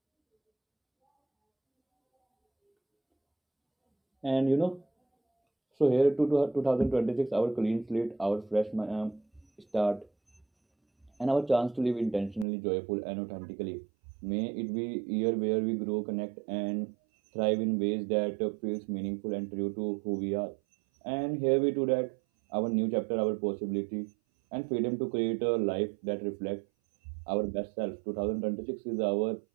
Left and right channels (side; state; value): left; drops out; at 12.5 s